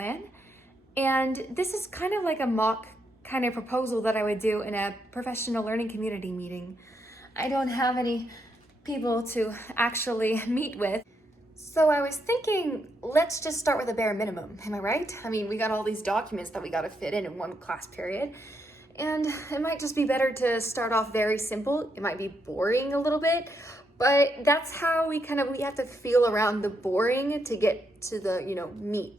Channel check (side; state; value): both; normal; correlation 0.79